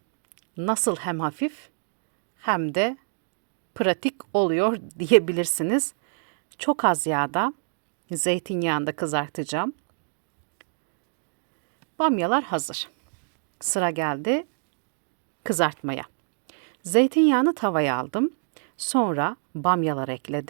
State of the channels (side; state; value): left; silent; digital silence